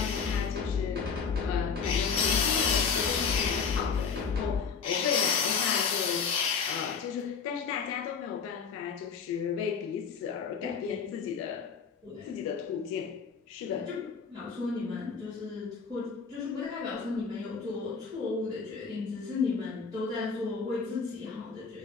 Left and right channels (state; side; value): quieter; right; 5.8 dB